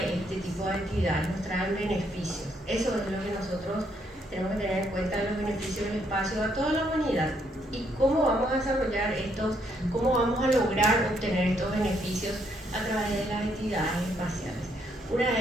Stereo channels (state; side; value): normal; both; correlation 0.73